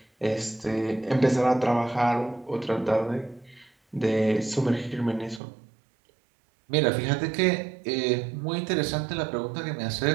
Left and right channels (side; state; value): left; drops out; at 5.4 s